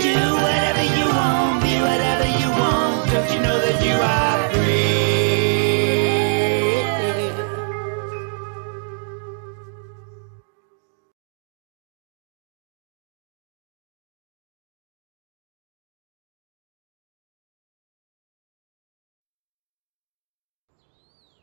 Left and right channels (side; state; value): left; silent; digital silence